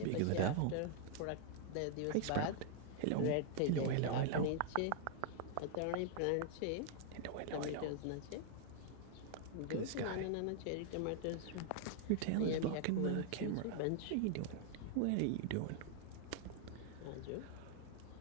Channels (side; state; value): both; different; correlation -0.01